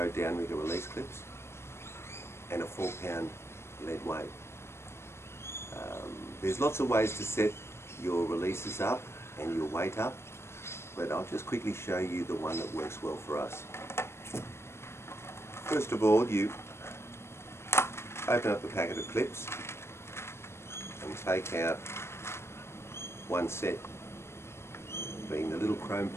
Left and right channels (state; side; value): late; right; 0.12 ms